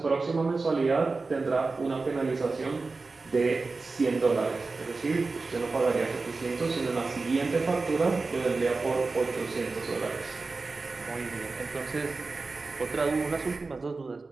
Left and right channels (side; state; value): left; quieter; 3.9 dB